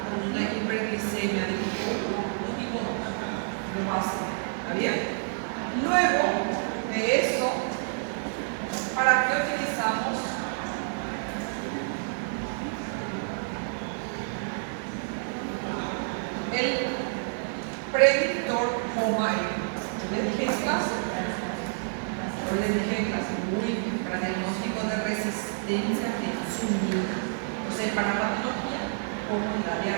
con una hiperglicemia de tipo 1 o tipo 2. Lo básico. ¿Está bien? Luego de eso, ¿para qué utilizamos el predictor HOMA-E? ¿Les dije en clase? Yo les dije en clase, muy bien, para diagnóstico de resistencia de insulina. O sea, para patología como la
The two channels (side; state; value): left; silent; digital silence